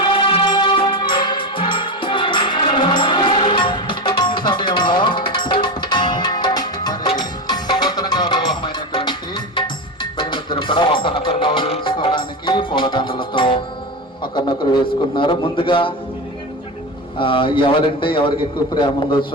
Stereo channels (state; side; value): normal; both; correlation 0.20